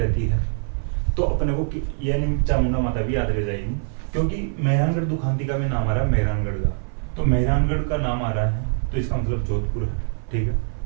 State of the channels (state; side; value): silent; left; 55 dB below the other